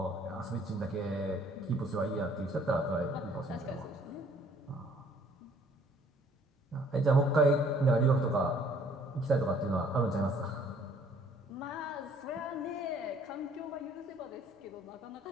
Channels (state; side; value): normal; both; correlation 0.60